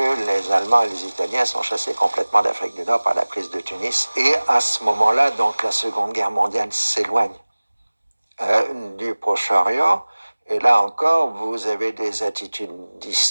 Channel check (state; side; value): inverted; both; correlation -1.00